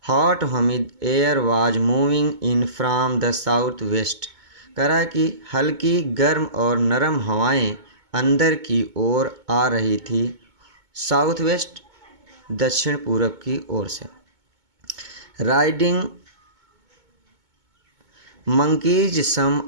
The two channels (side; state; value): left; late; 2.2 ms